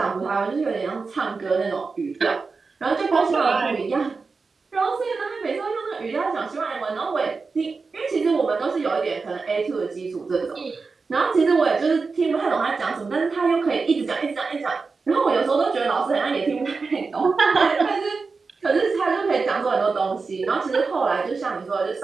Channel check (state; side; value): quieter; left; 4.5 dB